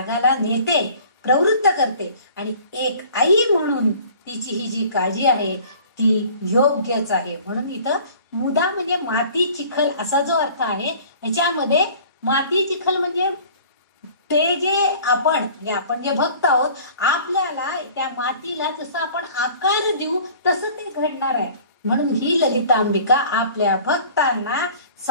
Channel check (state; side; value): inverted; both; correlation -0.48